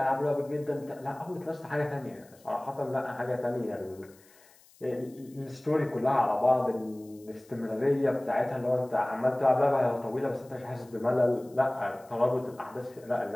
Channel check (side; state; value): left; noise; hiss, 27 dB below the sound